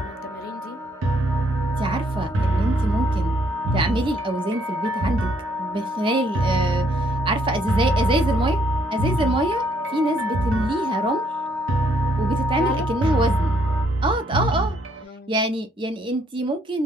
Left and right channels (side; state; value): both; normal; correlation 0.69